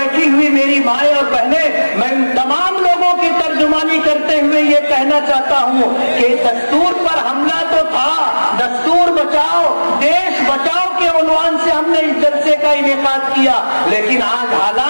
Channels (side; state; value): both; inverted; correlation -1.00